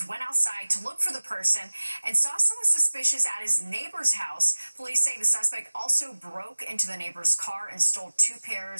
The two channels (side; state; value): both; inverted; correlation -1.00